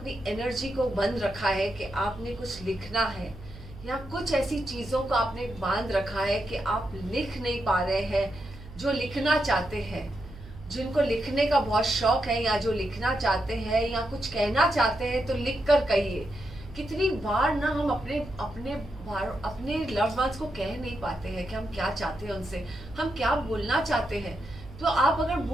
एनर्जी को बंद रखा है कि आपने कुछ लिखना है, या कुछ ऐसी चीजों को आपने बांध रखा है कि आप लिख नहीं पा रहे हैं. जो लिखना चाहते हैं, जिनको लिखने का बहुत शौक है, या जो लिखना चाहते हैं या कुछ कहना चाहते हैं, तो लिख कर कहिए. कितनी बार ना हम अपने लव्ड वंस को कह नहीं पाते हैं कि हम क्या चाहते हैं उनसे, हम क्या बोलना चाहते हैं. तो आप अगर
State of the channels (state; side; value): noise; right; hum, 16 dB below the sound